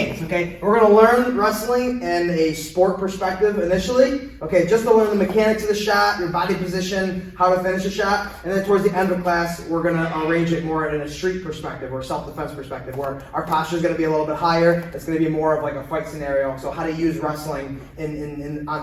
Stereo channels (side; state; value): both; identical; correlation 1.00